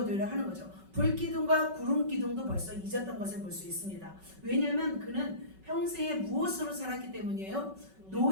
하는 거죠. 불기둥과 구름기둥도 벌써 잊었던 것을 볼 수 있습니다. 왜냐하면 그는 평생에 무엇으로 살았기 때문이에요?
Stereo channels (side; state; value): left; late; 5.3 ms